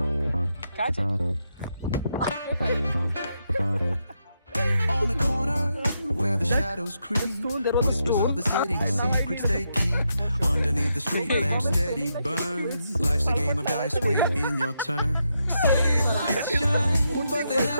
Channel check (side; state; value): both; inverted; correlation -0.82